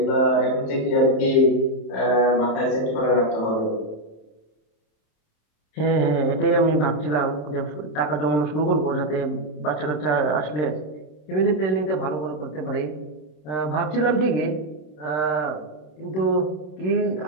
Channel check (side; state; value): right; late; 27 ms